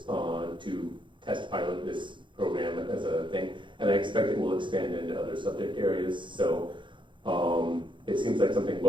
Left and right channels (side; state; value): left; late; 0.23 ms